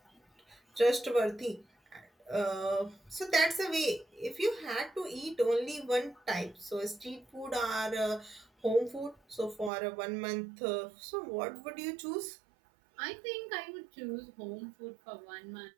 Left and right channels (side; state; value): left; drops out; at 9.7 s